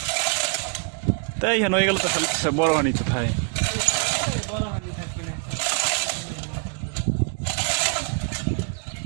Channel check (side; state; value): left; quieter; 39.6 dB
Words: তাই কেন হয়ে গেল তো খালি বড় হানি কোথায়